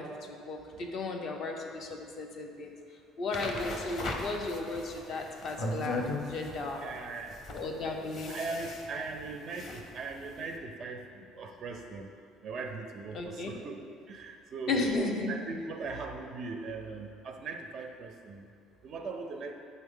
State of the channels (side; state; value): both; normal; correlation 0.53